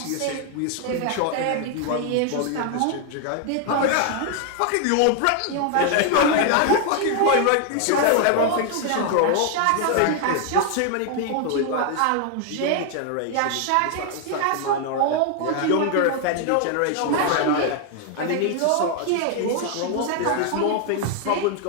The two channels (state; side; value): different; both; correlation 0.00